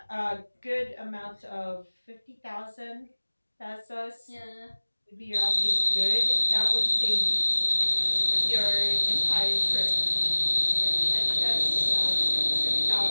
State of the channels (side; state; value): both; inverted; correlation -1.00